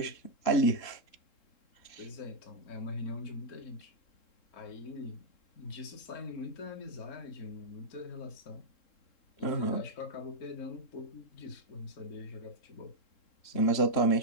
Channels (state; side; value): late; right; 3.7 ms